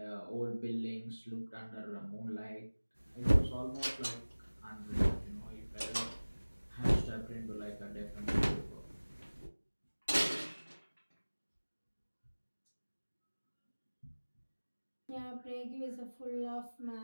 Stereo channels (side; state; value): both; inverted; correlation -1.00